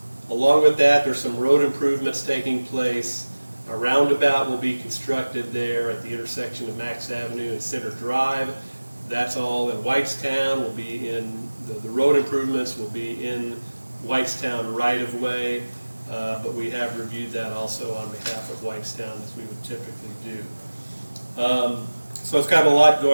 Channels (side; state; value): both; inverted; correlation -1.00